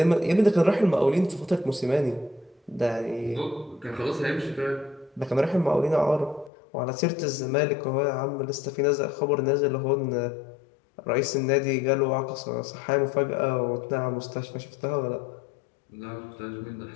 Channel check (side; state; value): right; drops out; at 6.5 s